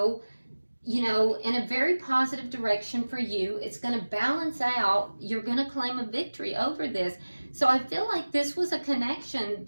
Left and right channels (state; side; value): inverted; both; correlation -1.00